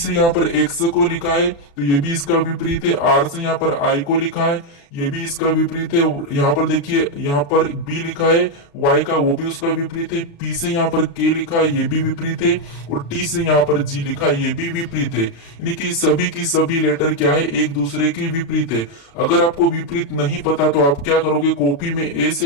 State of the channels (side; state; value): right; late; 36 ms